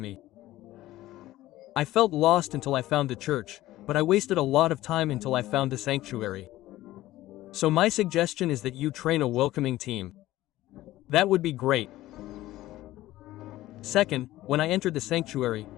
I felt lost until I found the church, but I wasted a lot of time until I found the sanctuary. So my suggestion is that you train a welcoming team. That would be great. Second, when I entered the sanctuary,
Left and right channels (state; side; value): quieter; right; 15.8 dB